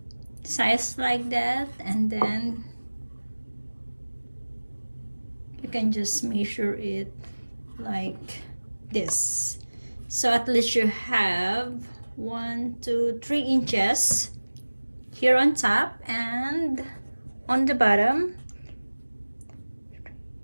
size like that, and then you can just measure it like this. So at least you have 1 2 3 inches here on top and on the bottom.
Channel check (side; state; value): both; inverted; correlation -1.00